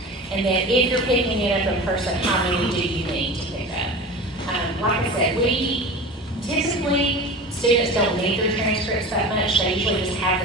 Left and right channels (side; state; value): both; normal; correlation 0.33